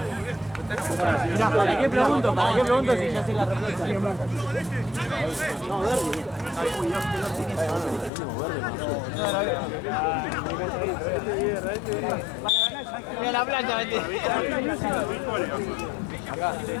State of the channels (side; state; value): right; drops out; at 8.1 s